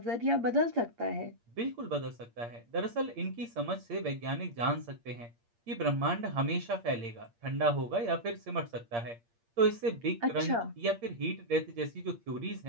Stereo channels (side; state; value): left; late; 8.6 ms